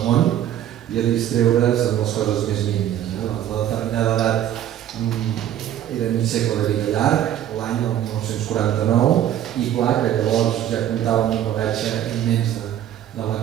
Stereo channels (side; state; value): left; quieter; 11.3 dB